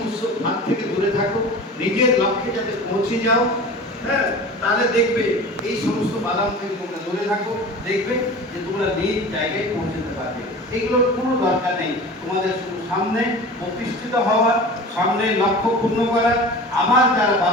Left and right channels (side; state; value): both; normal; correlation 0.36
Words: ভাগ থেকে দূরে থাকো, নিজের লক্ষ্যে যাতে পৌঁছে যাও। হ্যাঁ, তাহলে দেখবে এই সমস্ত বাদাম থেকে তোমরা দূরে থাকো, দেখবে যে তোমরা নিজ জায়গায় পৌঁছতে পারবে। এগুলোর কোনো দরকার নেই, তোমাদের শুধু সামনে প্রতিষ্ঠিত হওয়ার, সামনে লক্ষ্য পূর্ণ করার, আমার যারা